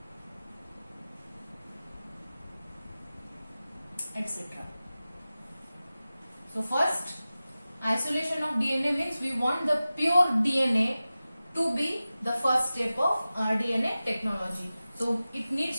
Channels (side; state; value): both; inverted; correlation -0.96